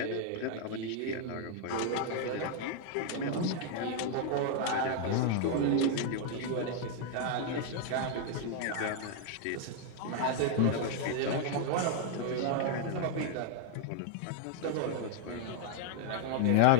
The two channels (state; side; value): different; both; correlation 0.00